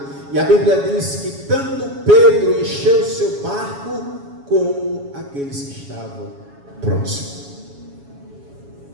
E a Bíblia diz que tanto Pedro encheu seu barco, como aqueles que estavam próximos.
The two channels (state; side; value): late; left; 7.2 ms